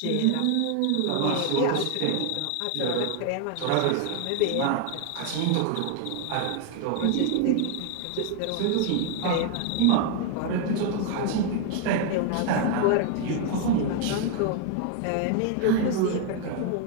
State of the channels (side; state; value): both; different; correlation 0.00